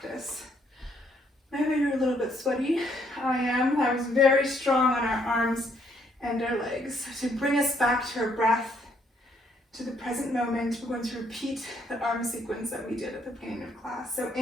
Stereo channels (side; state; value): both; normal; correlation 0.70